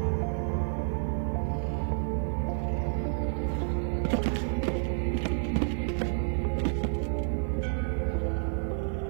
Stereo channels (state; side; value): silent; left; 58 dB below the other